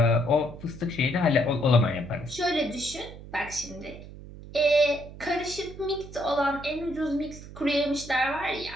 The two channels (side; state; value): right; noise; hum, 15 dB below the sound